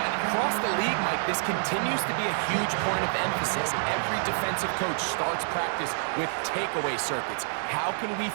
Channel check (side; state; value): left; silent; 60 dB below the other